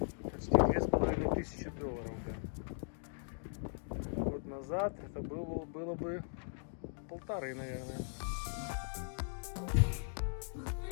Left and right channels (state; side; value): silent; right; digital silence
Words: почти $2500. Да. Год назад это было бы 1,5, наверное.